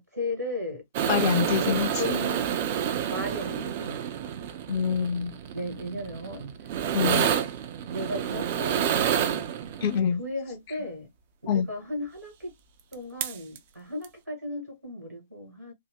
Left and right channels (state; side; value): inverted; both; correlation -0.37